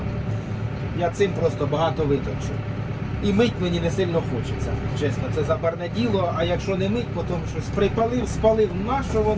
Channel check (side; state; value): both; identical; correlation 1.00